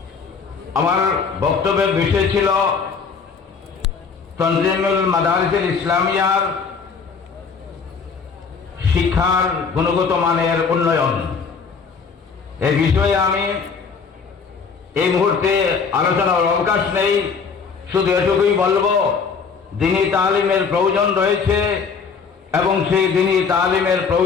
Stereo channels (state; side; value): quieter; right; 5.6 dB